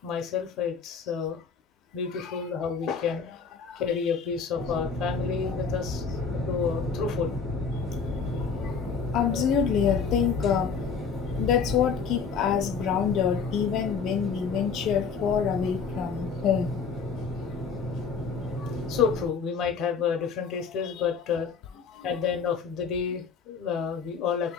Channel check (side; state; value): right; quieter; 5.7 dB